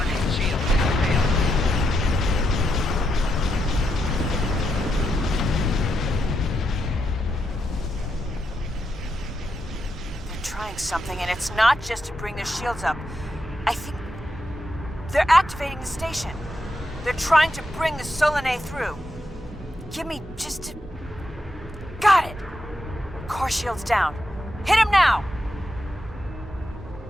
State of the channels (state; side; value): normal; both; correlation 0.83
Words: shields have failed. They're trying something, and it's not just to bring their shields up. I think they're activating the station. They're trying to bring the Solanae through. Give me just a... Got it! Core shields down. Hit him now!